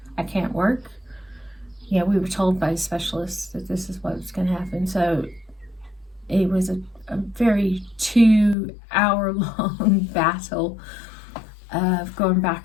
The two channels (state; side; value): drops out; right; at 8.6 s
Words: I can't work. We were told by specialists that this is what's going to happen. So it was a very 2-hour-long battle of going